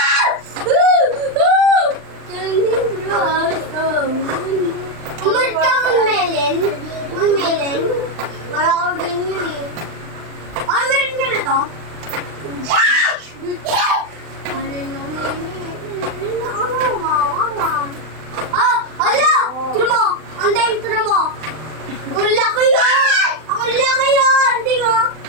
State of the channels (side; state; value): left; late; 39 ms